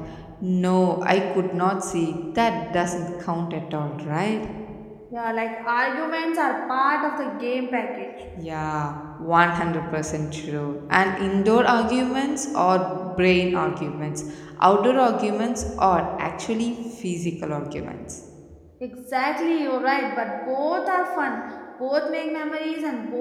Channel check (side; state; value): both; identical; correlation 1.00